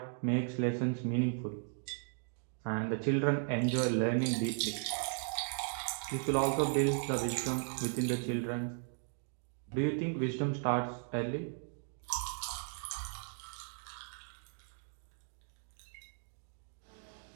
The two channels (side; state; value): left; silent; 53 dB below the other